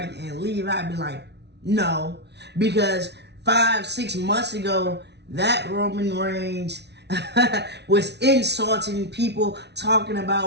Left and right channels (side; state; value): left; late; 0.50 ms